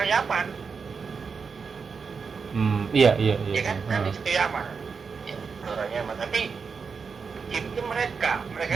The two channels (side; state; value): left; quieter; 5.5 dB